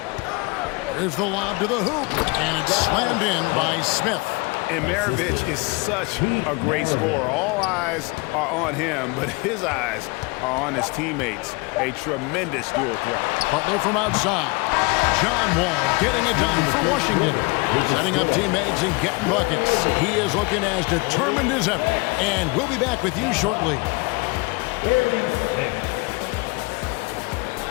Here's the lob to the hoop, and it's slammed in by Smith. And Maravich is such a great scorer. All eyes are on him, but his eyes are on his teammates. A tremendous dual threat. Butler from outside. John Wall getting it done for Washington. Setting up teammates and getting buckets. He is looking as determined as ever. And we'll be back with you shortly.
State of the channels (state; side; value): quieter; right; 27.3 dB